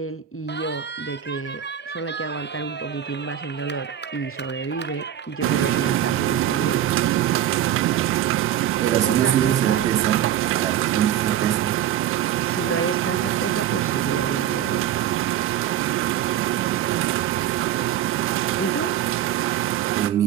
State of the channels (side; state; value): left; quieter; 10.8 dB